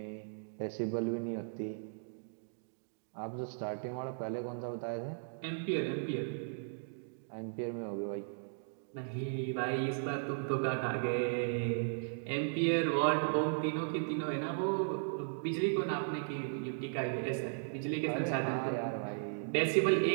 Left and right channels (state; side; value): silent; left; digital silence